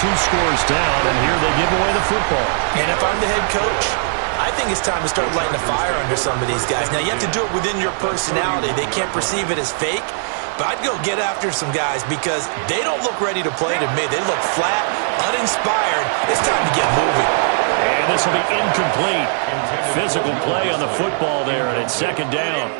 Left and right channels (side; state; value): left; silent; digital silence